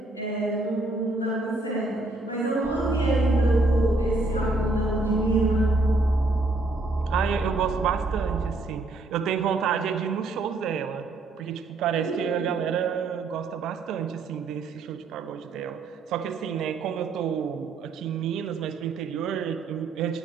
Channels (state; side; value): quieter; left; 3.2 dB